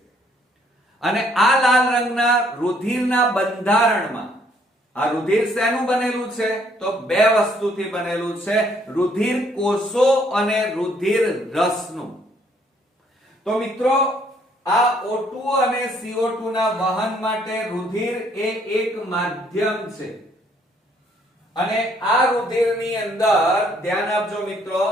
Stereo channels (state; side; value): normal; both; correlation 0.66